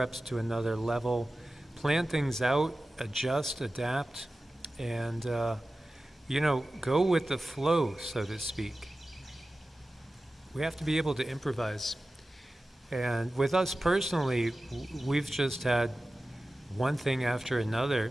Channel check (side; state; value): both; normal; correlation 0.95